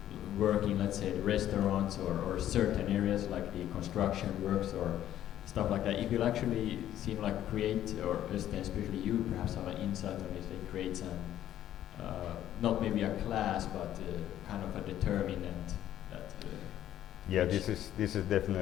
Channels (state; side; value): quieter; right; 11.9 dB